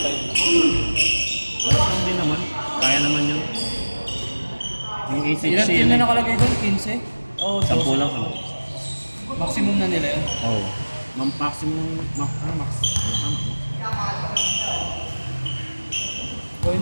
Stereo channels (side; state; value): both; inverted; correlation -1.00